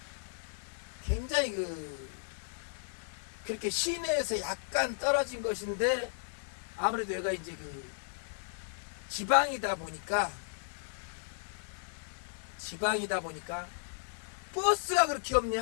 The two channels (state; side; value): silent; right; 55 dB below the other